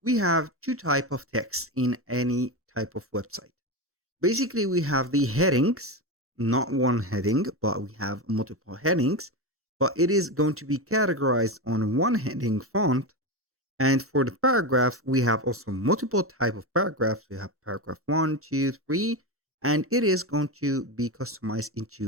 We have two type of text in any type of website. Basically, we have the headings, not one heading, but we have multiple headings, but it is going to be categorized on one heading font. And for the paragraph, we have also multiple type of paragraphs. We have paragraph 1, 2, 3, and it is going to be customized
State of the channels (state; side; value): normal; both; correlation 0.17